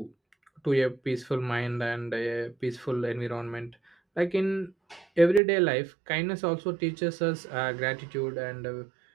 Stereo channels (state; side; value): drops out; left; at 5.4 s